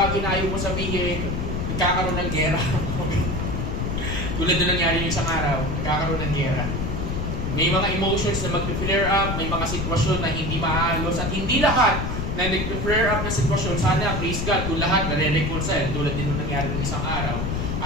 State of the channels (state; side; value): noise; left; rumble, 2 dB below the sound